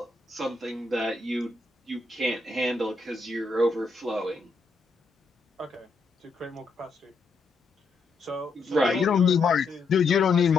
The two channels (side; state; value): right; quieter; 3.9 dB